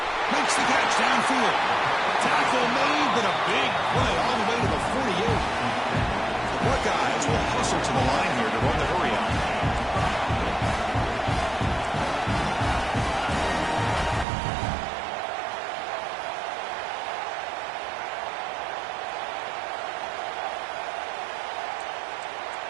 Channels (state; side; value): drops out; left; at 14.2 s